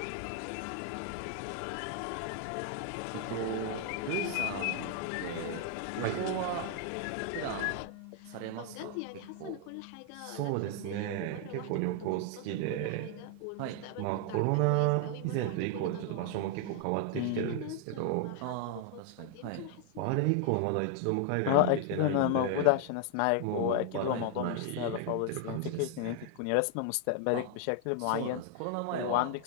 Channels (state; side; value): different; both; correlation 0.00